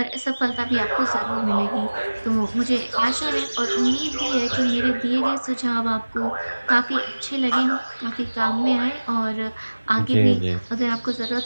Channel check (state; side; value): inverted; both; correlation -1.00